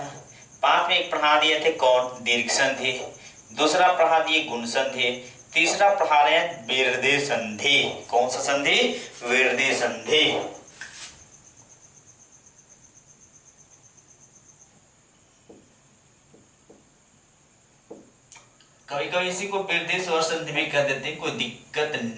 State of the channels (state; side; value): identical; both; correlation 1.00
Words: 5 में एक पढ़ा दिए थे कौन? दीर्घ संधि। दूसरा पढ़ा दिए गुण संधि। तीसरा पढ़ा रहे हैं विरदि संधि। कौन सा संधि? विरदि संधि। कभी कभी इसी को विरदि स्वर संधि भी कर देते हैं, कोई दिक्कत